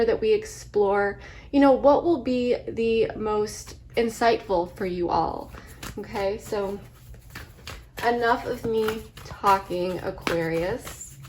that we explore, what will be the most insightful for you all. Okay, so enough of me talking, Aquarius.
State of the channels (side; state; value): both; identical; correlation 1.00